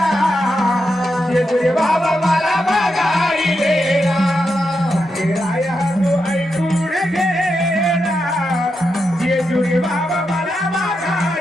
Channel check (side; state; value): both; normal; correlation 0.85